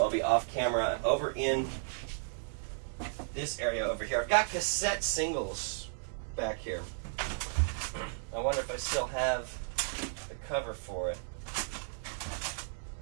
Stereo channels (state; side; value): silent; left; 55 dB below the other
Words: I'll be off camera, over in this area over here. I've got cassette singles back here. I wonder if I still have the cover for it.